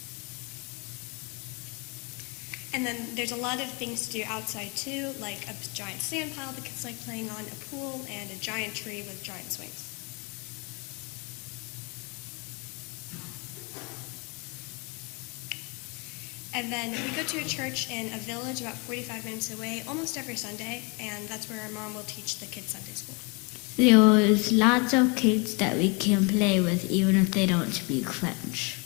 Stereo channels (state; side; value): quieter; right; 31.1 dB